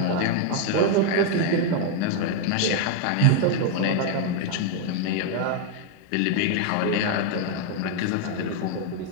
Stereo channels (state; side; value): different; both; correlation 0.00